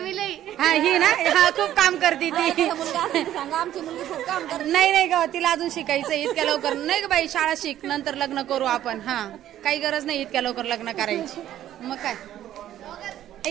लई. हा ही ना हा खूप काम करते ती. सांगा आमची मुलगी खूप काम करते. नाही ग तिला अजून शिकायचं इतक्या लवकर नाही ग बाई. शाळा शिक नंतर लग्न करू आपण. हा काही गरज नाही इतक्या लवकर लग्न करायची. मग काय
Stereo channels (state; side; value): quieter; left; 12.2 dB